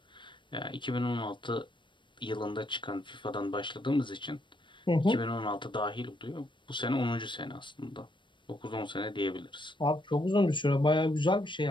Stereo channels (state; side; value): late; right; 0.23 ms